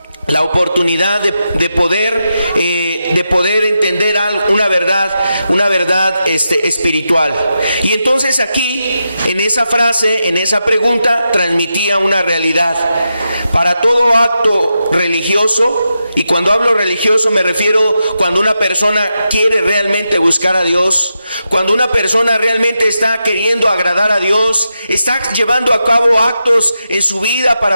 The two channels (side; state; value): both; inverted; correlation -0.87